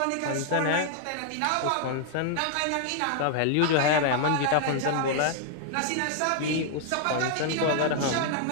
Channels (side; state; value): both; different; correlation 0.00